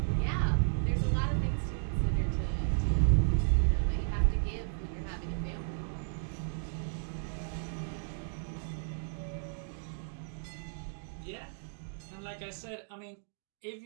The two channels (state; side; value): silent; left; digital silence